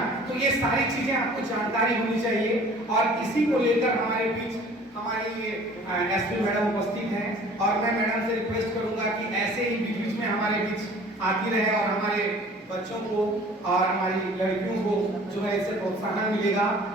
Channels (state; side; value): normal; both; correlation 0.49